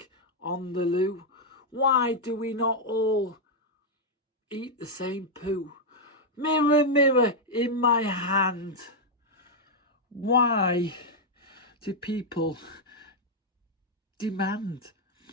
on the loo, why do we not all eat the same poo? Mirror, mirror in my hand, why do people demand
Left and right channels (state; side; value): normal; both; correlation -0.02